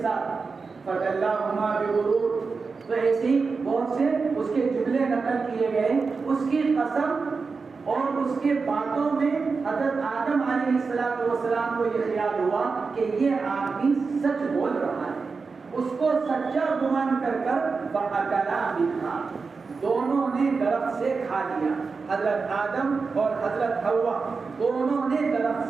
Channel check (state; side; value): quieter; left; 4.6 dB